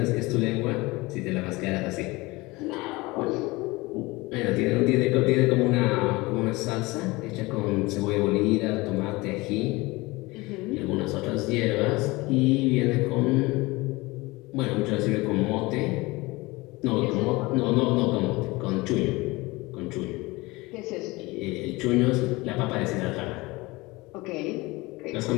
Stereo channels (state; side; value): quieter; right; 22.3 dB